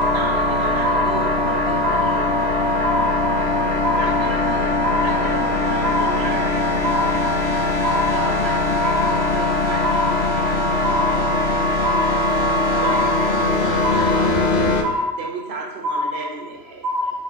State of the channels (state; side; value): late; left; 3.0 ms